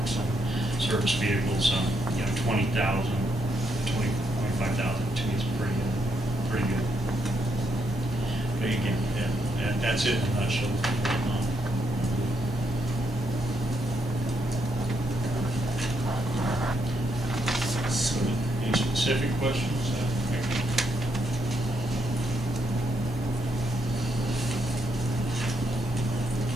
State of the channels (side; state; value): both; normal; correlation 0.78